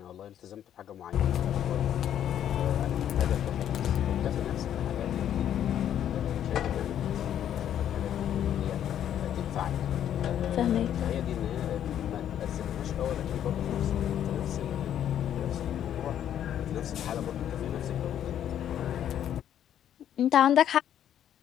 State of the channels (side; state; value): right; quieter; 10.3 dB